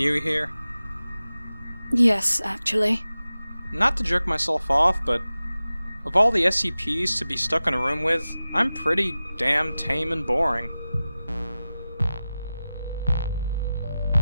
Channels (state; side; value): inverted; both; correlation -0.95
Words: here? Yes, actually. Not to jerk myself off, but of all the SCPs to be stuck in a room with, I'm pretty damn tame and boring.